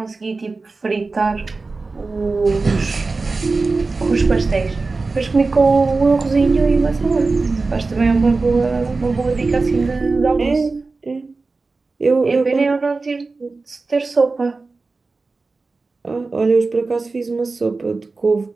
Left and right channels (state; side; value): quieter; left; 3.8 dB